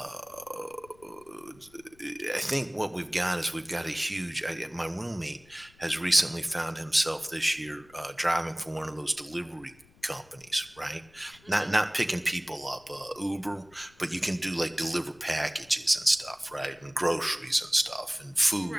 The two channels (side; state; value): left; noise; rumble, 27 dB below the sound